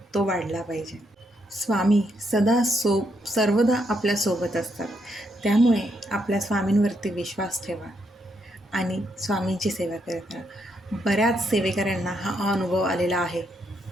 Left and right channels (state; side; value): normal; both; correlation 0.77